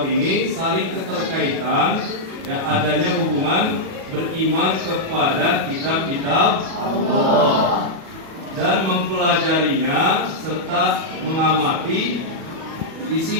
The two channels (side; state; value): left; late; 37 ms